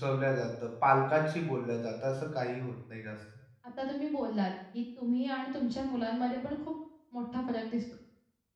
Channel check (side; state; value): both; identical; correlation 1.00